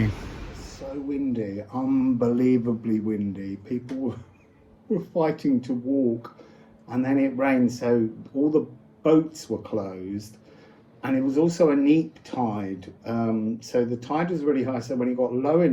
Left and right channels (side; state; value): both; identical; correlation 1.00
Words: So windy, unbelievably windy. People were fighting to walk, and then it rained, so all the boats were closed. And it was also a neap tide, so the tide was really high, so when it got low